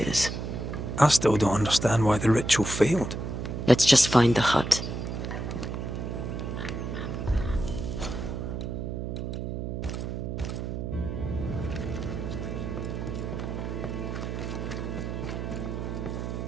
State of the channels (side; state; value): right; noise; hum, 4 dB below the sound